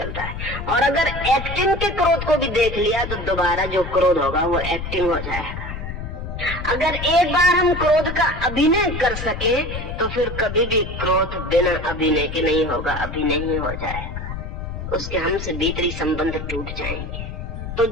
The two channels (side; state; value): left; noise; rumble, 7 dB below the sound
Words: रहा है। और अगर एक्टिंग के क्रोध को भी देख लिया तो दोबारा जो क्रोध होगा वो एक्टिंग हो जाएगा। अगर एक बार हम क्रोध का अभिनय कर सके तो फिर कभी भी क्रोध बिना अभिनय के नहीं होगा, अभिनय ही हो जाएगा, उसके हमसे भीतरी संबंध टूट जाएंगे। तो